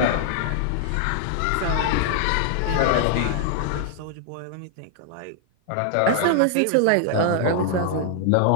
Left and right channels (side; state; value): both; different; correlation -0.01